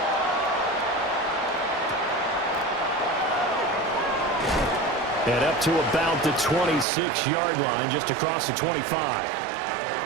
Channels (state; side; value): drops out; left; at 6.9 s